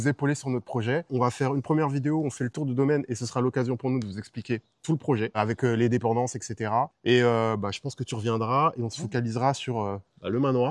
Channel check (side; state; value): both; identical; correlation 1.00